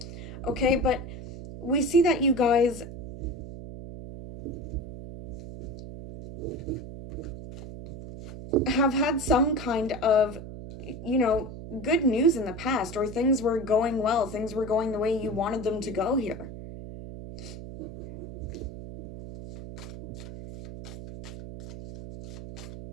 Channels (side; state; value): right; noise; hum, 11 dB below the sound